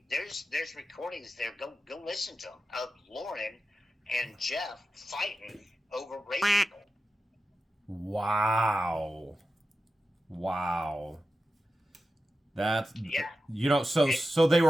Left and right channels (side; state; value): both; normal; correlation 0.92